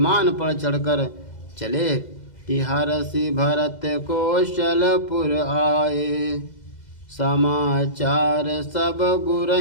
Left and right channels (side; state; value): right; late; 2.0 ms